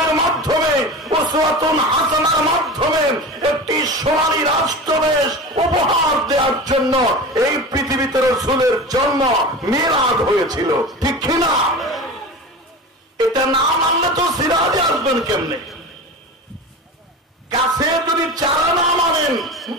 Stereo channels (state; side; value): normal; both; correlation 0.31